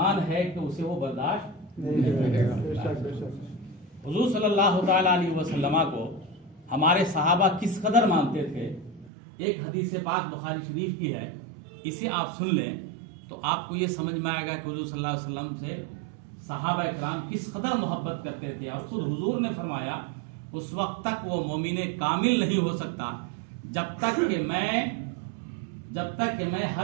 ہے کہ اسے وہ برداشت نہیں کرے گا۔ حضور صلی اللہ تعالیٰ علیہ وسلم کو ہمارے صحابہ کس قدر مانتے تھے، ایک حدیث پاک بخاری شریف کی ہے، اسے آپ سن لیں تو آپ کو یہ سمجھ میں آئے گا کہ حضور صلی اللہ علیہ وسلم سے صحابہ اکرام کس قدر محبت کرتے تھے۔ اور خود حضور نے فرمایا اس وقت تک وہ مومن کامل نہیں ہو سکتا جب تک کہ میں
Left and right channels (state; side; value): drops out; left; at 9.1 s